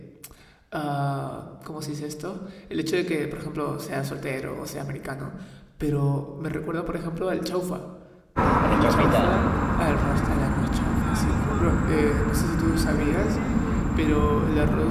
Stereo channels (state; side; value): identical; both; correlation 1.00